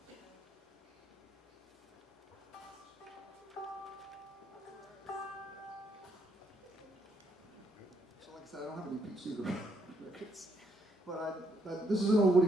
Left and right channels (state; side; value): normal; both; correlation 0.73